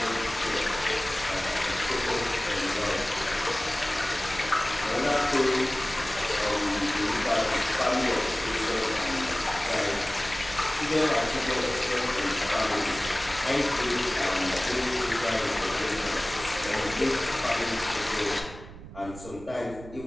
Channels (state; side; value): noise; right; rumble, 15 dB below the sound